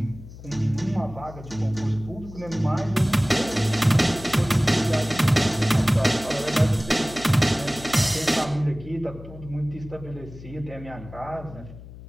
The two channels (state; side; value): noise; left; hum, 16 dB below the sound